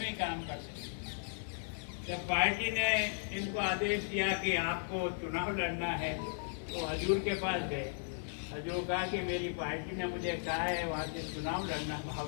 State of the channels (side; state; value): right; silent; digital silence